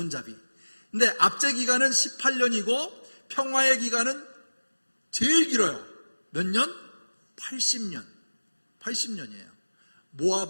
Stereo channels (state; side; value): inverted; both; correlation -1.00